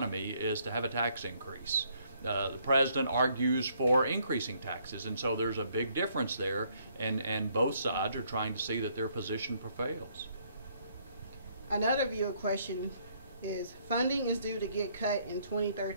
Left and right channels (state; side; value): inverted; both; correlation -0.68